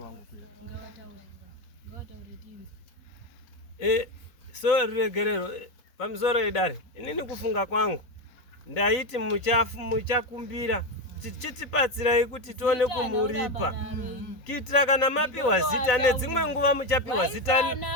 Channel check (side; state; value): right; late; 4.0 ms